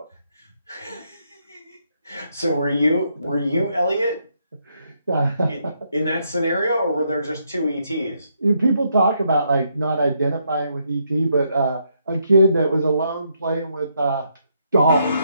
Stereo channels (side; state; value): both; inverted; correlation -0.75